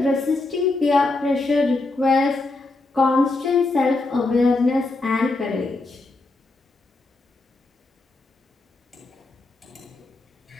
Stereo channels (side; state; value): right; quieter; 3.2 dB